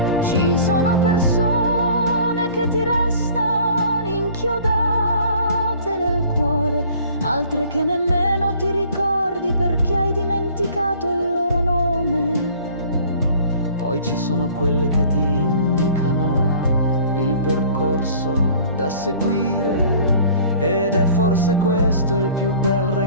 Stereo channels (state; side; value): inverted; both; correlation -0.51